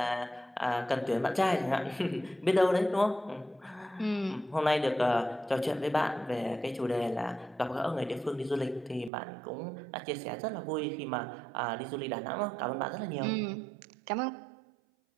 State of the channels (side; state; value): left; drops out; at 9.1 s